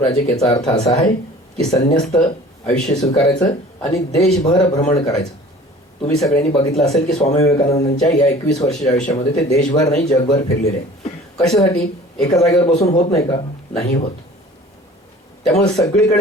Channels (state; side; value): normal; both; correlation 0.46